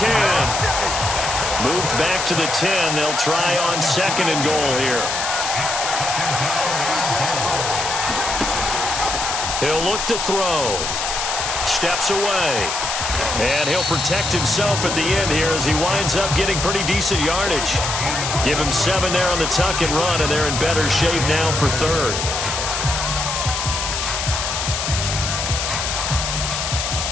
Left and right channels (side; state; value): left; noise; hiss, 2 dB below the sound